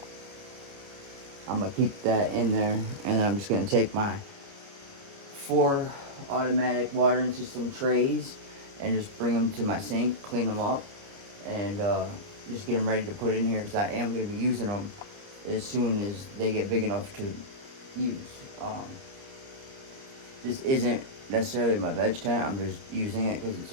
I'm gonna keep that in there, and I'm just gonna take my 4 automatic watering system trays and just bring them to my sink, clean them up, and just get them ready to put in here, because I am going to be using them as soon as they get big enough to use. This isn't necessarily my veg tent. I'm just using it because it's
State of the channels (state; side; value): late; left; 30 ms